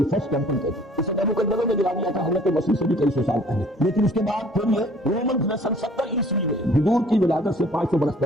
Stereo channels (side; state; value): both; normal; correlation 0.54